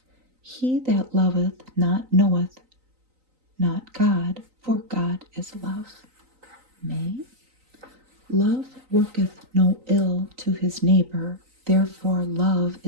He that loveth not knoweth not God, for God is love. May. Love worketh no ill to his neighbor, therefore love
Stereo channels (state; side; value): late; left; 3.9 ms